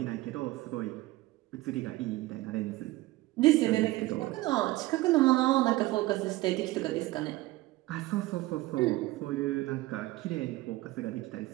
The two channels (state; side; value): quieter; left; 18.7 dB